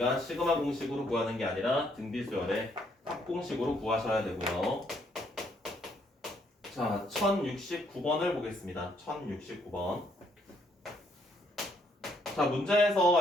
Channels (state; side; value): normal; both; correlation 0.70